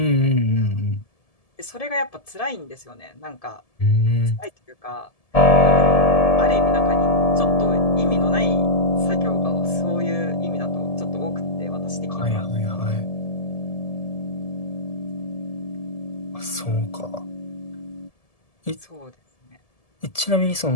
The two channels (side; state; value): right; late; 1.7 ms